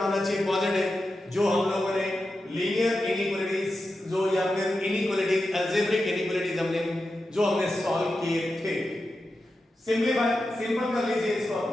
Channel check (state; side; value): normal; both; correlation 0.90